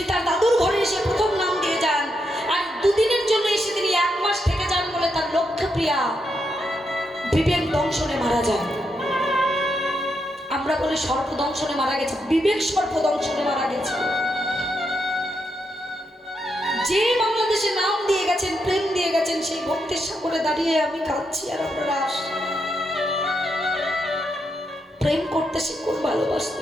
তার দাদুর ঘরে এসে প্রথম নাম দিয়ে যান, আর 2 দিনের জন্য এসে তিনি 1 মাস থেকে যান বলে তার লক্ষ্যপ্রিয়া বিবেক দংশনে মারা যান। আমরা বলি সর্পদংশনে মারা গেছে, বিবেক সর্পদংশনে মারা গেছে। যে বাংলাদেশে নাম দিয়ে গেছেন, প্রেম দিয়ে গেছেন, সেই ভক্তির সাগরে দাঁড়িয়ে আমি কাঁদছি আর আপনারা আসছেন। প্রেম করতে শিখুন, ভালোবাসতে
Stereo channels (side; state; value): both; normal; correlation 0.82